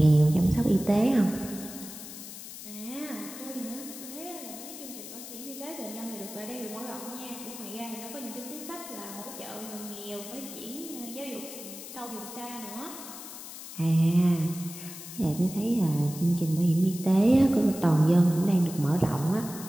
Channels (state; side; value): noise; left; hiss, 12 dB below the sound